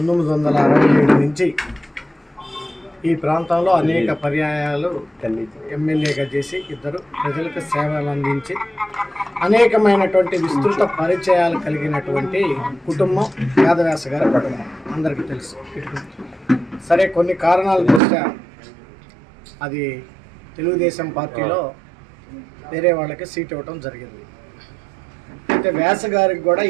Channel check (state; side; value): drops out; left; at 18.0 s